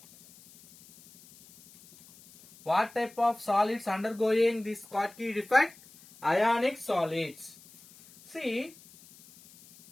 What type of solids undergoing this Schottky defect? Ionic solids. See,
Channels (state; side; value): noise; left; hiss, 24 dB below the sound